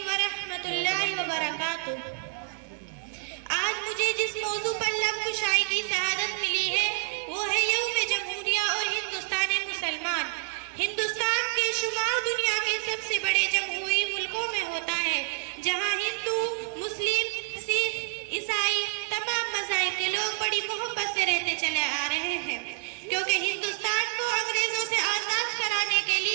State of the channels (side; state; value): left; silent; digital silence